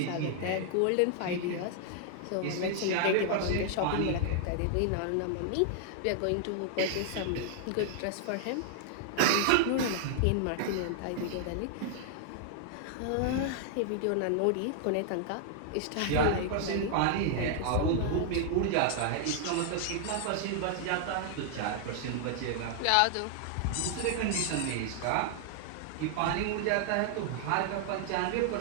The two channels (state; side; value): different; both; correlation -0.01